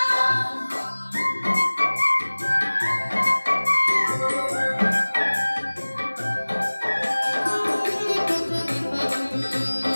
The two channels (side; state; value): both; inverted; correlation -1.00